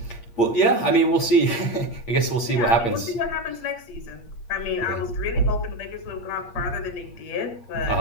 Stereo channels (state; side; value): late; right; 8.5 ms